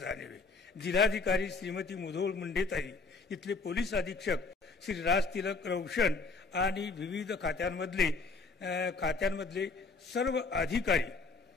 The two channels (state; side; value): quieter; right; 4.2 dB